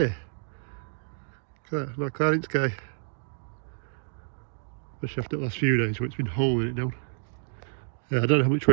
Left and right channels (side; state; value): left; silent; digital silence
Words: Look at that, not cloud in sky. Especially after the last few days where it's been holding it down. I don't know how much